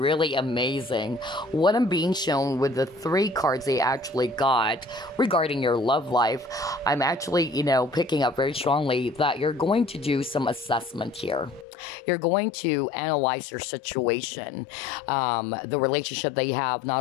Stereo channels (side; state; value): right; drops out; at 11.7 s